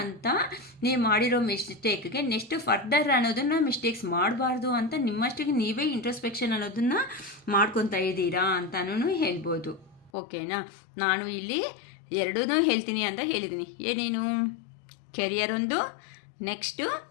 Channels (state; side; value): drops out; right; at 10.1 s